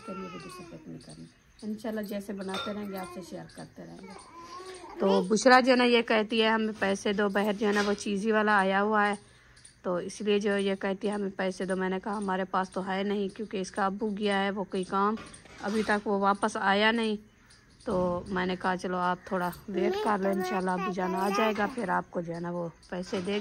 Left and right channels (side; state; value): both; identical; correlation 1.00